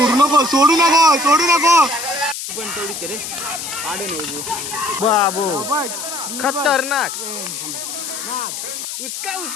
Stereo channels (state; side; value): noise; left; hiss, 7 dB below the sound